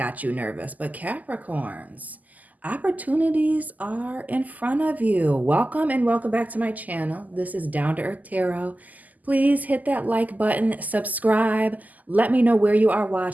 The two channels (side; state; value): left; late; 0.080 ms